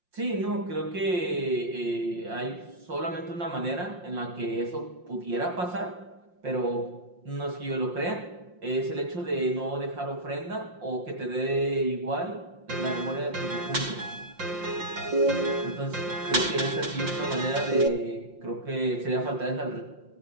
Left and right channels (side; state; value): left; late; 5.7 ms